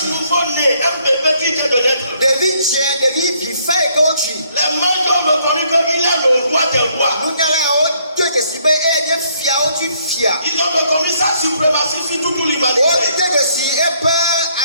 nouveau-né, un bébé qui vient de naître. Les mages ont reconnu qu'il est le roi des rois. Ils ont reconnu sa suprématie sur toute l'humanité.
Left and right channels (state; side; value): inverted; both; correlation -0.68